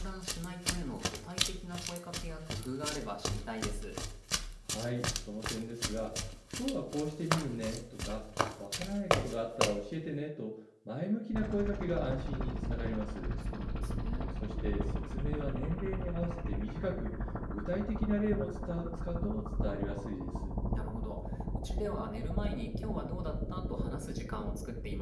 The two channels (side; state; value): both; identical; correlation 1.00